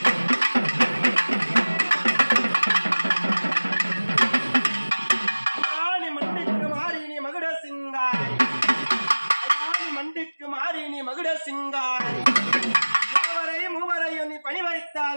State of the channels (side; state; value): both; inverted; correlation -1.00